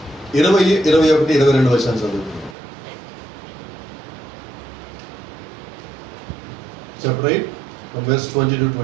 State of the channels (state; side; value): drops out; left; at 2.6 s